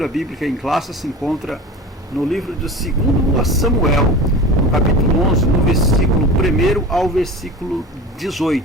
bíblica em classe se encontra no livro de 2 Samuel, no capítulo 11, no versículo 1 ao versículo 18.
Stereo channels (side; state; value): both; normal; correlation 0.34